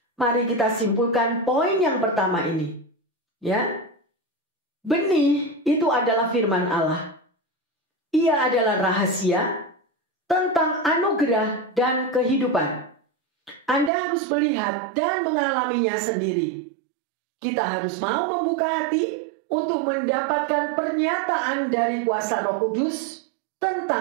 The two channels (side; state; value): left; drops out; at 13.9 s